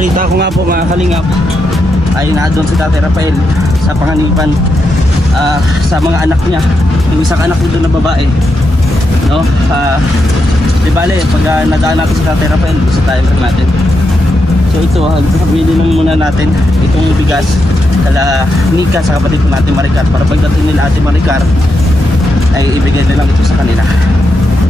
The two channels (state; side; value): normal; both; correlation 0.84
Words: ko nga po mga kalingap ay doon si Tatay Rafael sa panganipan sa mga anak niya. Yung isang anak nito na babae, no? Di bale, pag nadaan natin si Tatay Rafael, gusto tayo lang natin. So ito, sabili lang muna natin itong bigas kala Nika sa kapatid ko natin Maricar, para pagdating nila Ate Maricar ay ibigay na lang ito sa kanila.